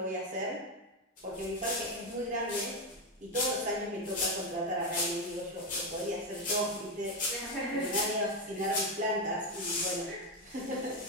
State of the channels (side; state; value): both; normal; correlation 0.08